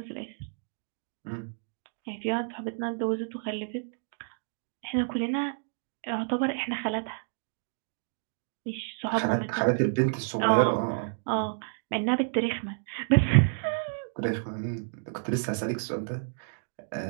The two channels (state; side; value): silent; left; digital silence